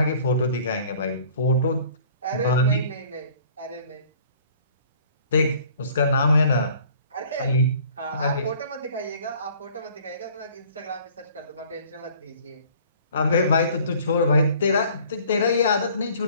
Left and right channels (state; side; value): inverted; both; correlation -0.53